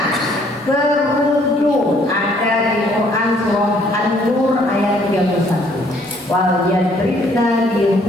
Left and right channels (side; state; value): both; normal; correlation 0.63